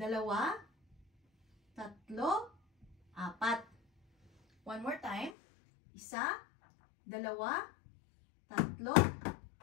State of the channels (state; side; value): drops out; right; at 5.4 s